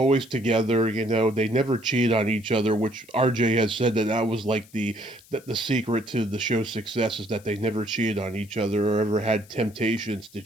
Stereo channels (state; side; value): noise; left; hiss, 25 dB below the sound